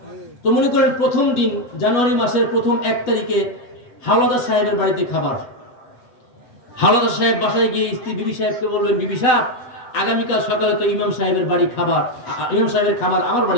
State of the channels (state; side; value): late; right; 8.2 ms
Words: তো মনে করেন প্রথম দিন জানুয়ারি মাসের প্রথম 1 তারিখে হাওলাদার সাহেবের বাড়িতে খাবার। হাওলাদার সাহেব বাসায় গিয়ে স্ত্রী বিবি সাহেবকে বলবেন, বিবি সাহেব আগামীকাল সকালে তো ইমাম সাহেবের বাড়ি খাবার, ইমাম সাহেবের খাবার আমার